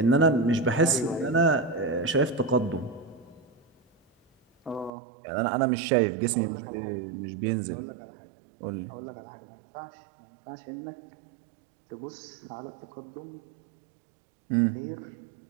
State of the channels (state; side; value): drops out; left; at 4.9 s